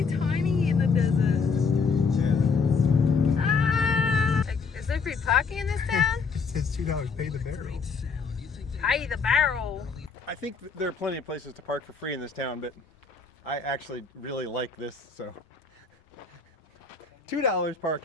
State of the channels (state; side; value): quieter; right; 5.0 dB